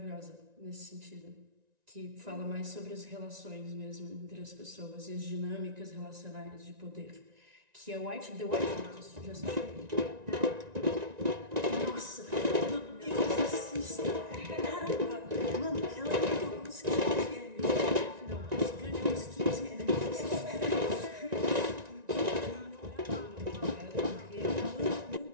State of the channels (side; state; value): left; late; 1.9 ms